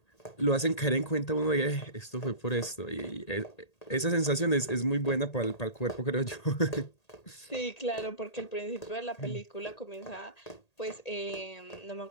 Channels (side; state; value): right; late; 1.8 ms